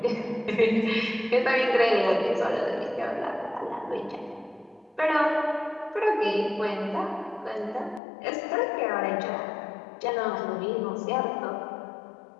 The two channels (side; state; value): right; drops out; at 8.0 s